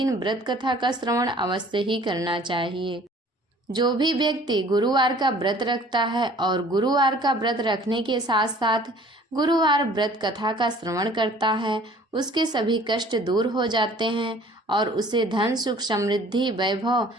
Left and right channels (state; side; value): normal; both; correlation 0.52